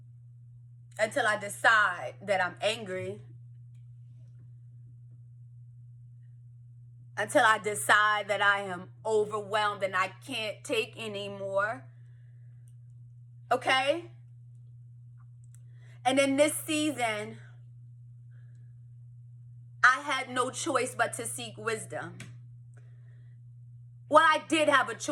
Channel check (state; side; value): identical; both; correlation 1.00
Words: Until I decide that I'm angry. Until I decide that I am overwhelmed and I can't take anymore. Okay? And in this season, I had no choice but to seek wisdom. Well, I did have a